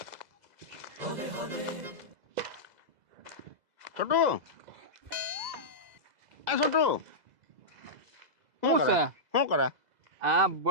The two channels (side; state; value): left; late; 2.0 ms